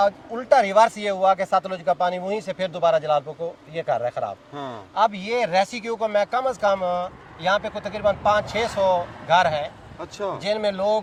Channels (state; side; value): identical; both; correlation 1.00